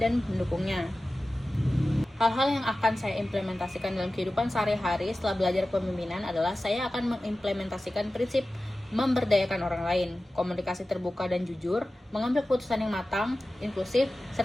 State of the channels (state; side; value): normal; both; correlation 0.95